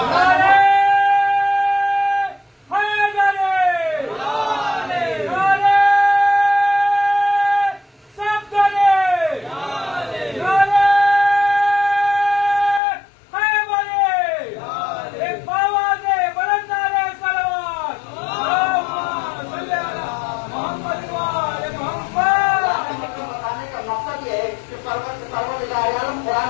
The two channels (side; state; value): right; drops out; at 12.8 s